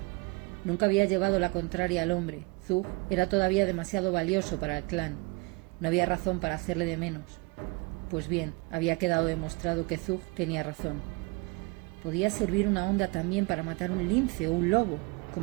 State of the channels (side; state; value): left; quieter; 27.1 dB